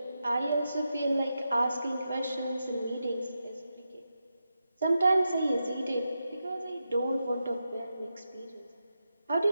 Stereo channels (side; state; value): both; inverted; correlation -0.88